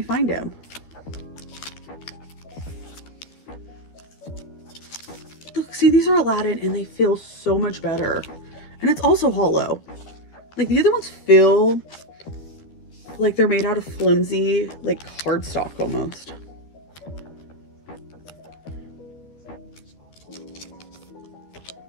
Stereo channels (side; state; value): right; late; 12 ms